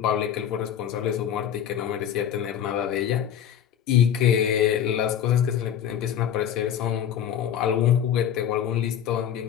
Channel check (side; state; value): right; quieter; 9.6 dB